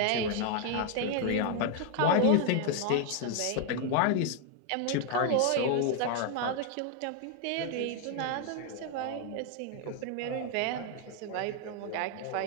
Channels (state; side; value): different; both; correlation 0.00